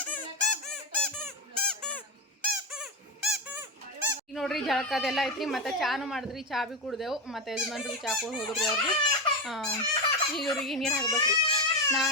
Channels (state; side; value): normal; both; correlation 0.13